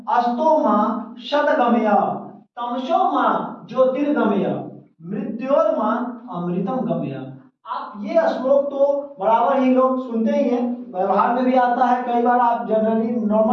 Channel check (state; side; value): identical; both; correlation 1.00